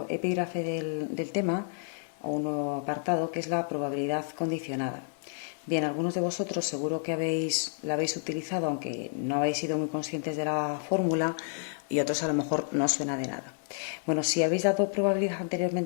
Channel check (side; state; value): right; silent; 58 dB below the other